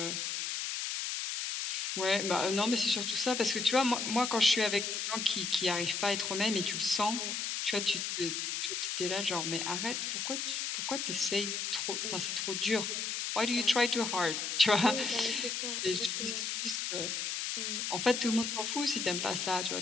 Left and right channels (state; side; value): noise; left; hiss, 2 dB below the sound